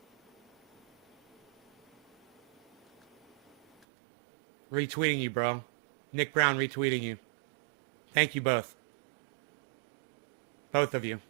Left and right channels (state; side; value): drops out; left; at 3.9 s